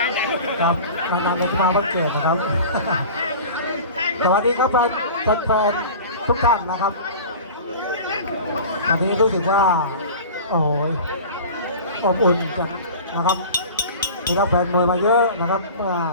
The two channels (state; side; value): inverted; both; correlation -0.38